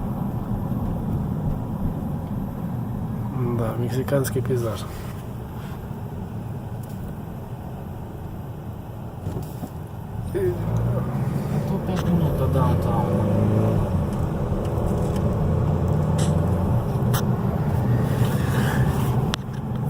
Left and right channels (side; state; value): both; identical; correlation 1.00